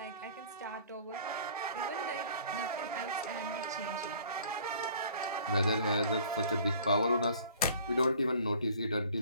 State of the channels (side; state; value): both; inverted; correlation -0.52